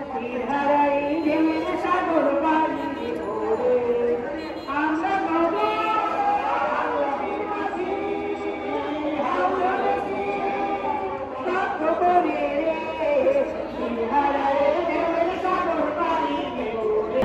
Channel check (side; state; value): both; identical; correlation 1.00